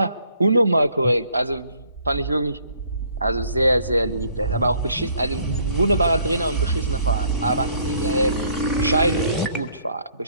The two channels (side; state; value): both; inverted; correlation -0.63